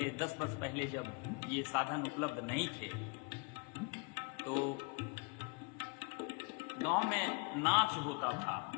10 वर्ष पहले जब ये साधन उपलब्ध नहीं थे तो गांव में नाच होता था,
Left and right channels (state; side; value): quieter; right; 30.6 dB